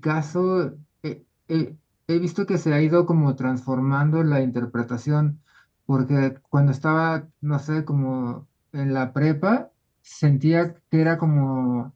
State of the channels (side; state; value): both; identical; correlation 1.00